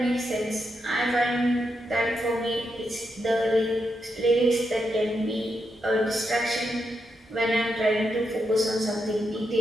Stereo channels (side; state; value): both; normal; correlation 0.83